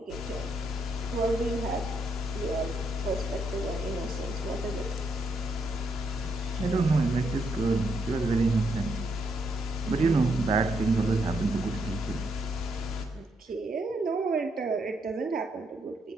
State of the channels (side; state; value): both; normal; correlation 0.76